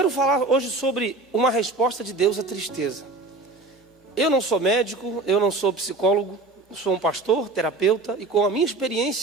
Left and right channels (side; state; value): left; quieter; 3.3 dB